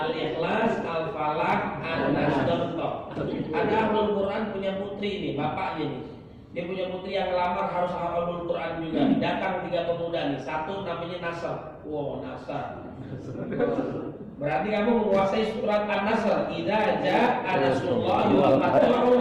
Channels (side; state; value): both; identical; correlation 1.00